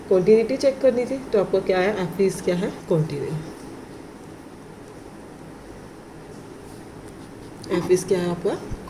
कॉन्टिन्यूटी चेक करनी थी, तो आपका क्या आया एफ इज क्या है कॉन्टिन्यू, एफ इज क्या है आपका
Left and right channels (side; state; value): both; identical; correlation 1.00